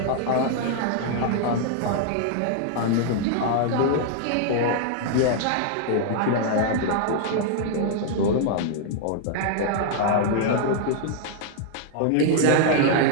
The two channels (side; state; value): both; different; correlation -0.01